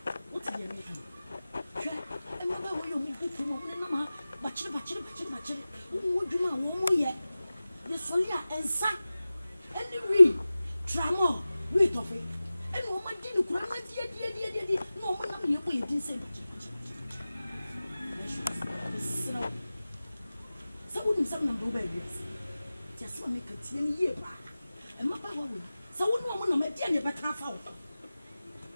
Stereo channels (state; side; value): inverted; both; correlation -0.96